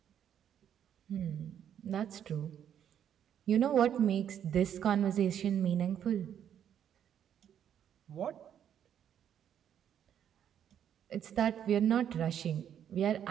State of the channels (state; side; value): quieter; left; 9.4 dB